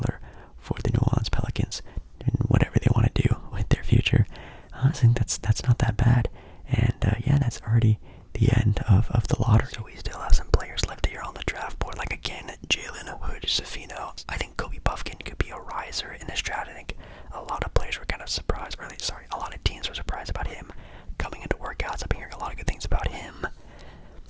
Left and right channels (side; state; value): both; identical; correlation 1.00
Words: for the New Orleans Pelicans and whatever they want to do with their future. Honestly, think that's not that bad. And yeah, that's already the end of the lottery. So we still have some players left here on the draft board. Like again, Jalen Hood, Safino. I think Kobe Buffkin could be a riser in this draft. I think a lot of players were kind of surprised, or sorry, a lot of teams were surprised about him coming into workouts. I've been hearing a lot of good things about him.